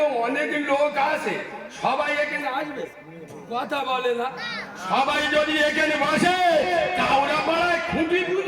অনেক লোক আছে, সবাই এখানে আসবে, কথা বলে না। সবাই যদি এখানে বসে, কাউরা পাড়ায় খুঁটি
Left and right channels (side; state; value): both; identical; correlation 1.00